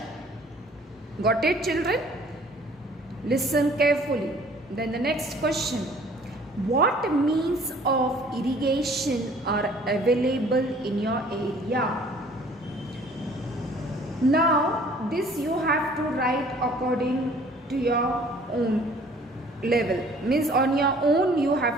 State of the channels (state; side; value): normal; both; correlation 0.54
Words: Got it, children? Listen carefully. Then the next question. What means of irrigation are available in your area? Now this you have to write according to your own level. Means on your own you